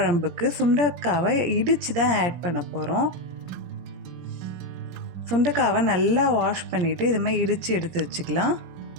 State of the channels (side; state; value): left; late; 17 ms